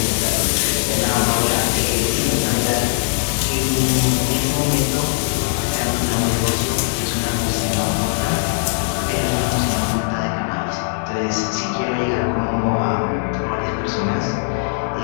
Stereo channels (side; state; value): right; silent; digital silence